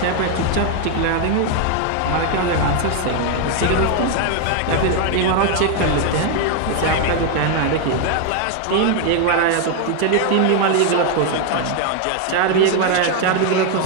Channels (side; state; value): both; different; correlation 0.01